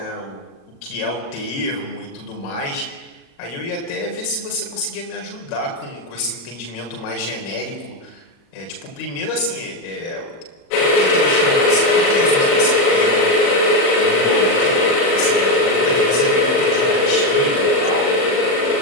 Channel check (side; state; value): right; late; 35 ms